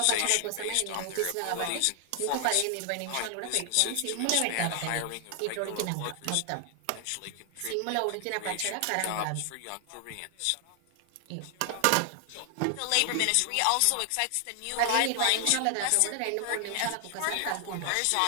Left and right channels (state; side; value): different; both; correlation 0.00